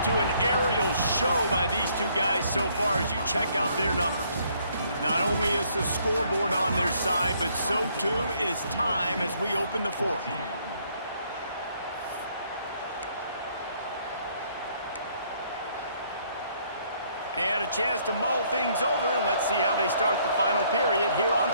to an aerial show by these two guys so far as you check out their numbers. Not only is the scoreboard on their side, but so too is time as we open the fourth. And a chance to mull things over, and let's see how they start the final period here on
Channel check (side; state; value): both; inverted; correlation -0.66